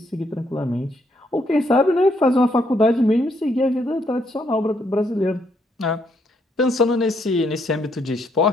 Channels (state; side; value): normal; both; correlation 0.73